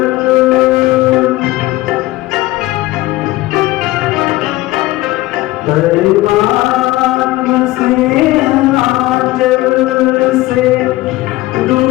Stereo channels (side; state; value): right; quieter; 18.4 dB